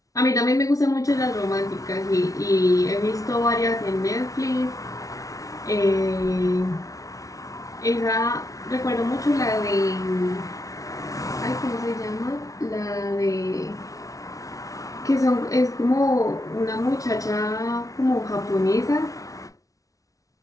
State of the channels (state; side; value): late; right; 0.17 ms